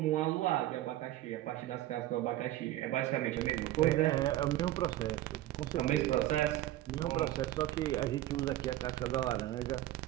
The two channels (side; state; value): left; quieter; 14.7 dB